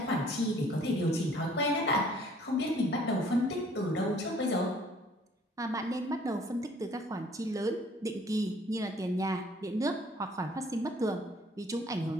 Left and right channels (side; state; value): both; normal; correlation 0.57